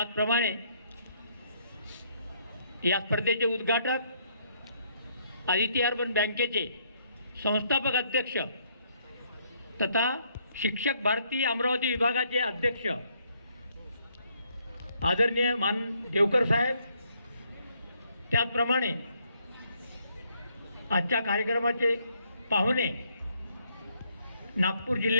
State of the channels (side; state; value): both; inverted; correlation -0.70